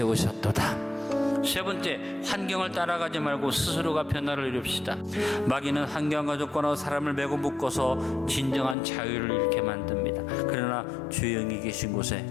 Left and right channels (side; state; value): right; drops out; at 8.8 s